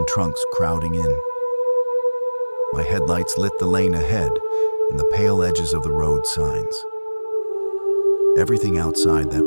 trunks crowding in. My headlights lit the lane ahead and the pale edges of the road signs. Everything outside that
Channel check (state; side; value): inverted; both; correlation -1.00